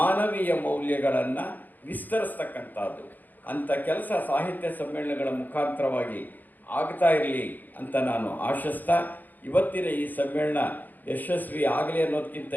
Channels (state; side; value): late; right; 0.085 ms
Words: ಮೌಲ್ಯಗಳನ್ನು ವಿಸ್ತರಿಸ್ತಕ್ಕಂಥದ್ದು. ಅಂಥ ಕೆಲಸ ಸಾಹಿತ್ಯ ಸಮ್ಮೇಳನಗಳ ಮುಖಾಂತರವಾಗಿ ಆಗ್ತಾ ಇರಲಿ ಅಂತ ನಾನು ಆಶಿಸ್ತಾ ಇವತ್ತಿನ ಈ ಸಮ್ಮೇಳನ ಯಶಸ್ವಿ ಆಗಲಿ ಅನ್ನೋದಕ್ಕಿಂತ